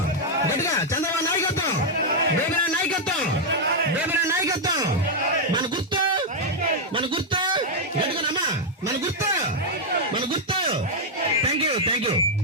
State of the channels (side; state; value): both; normal; correlation -0.02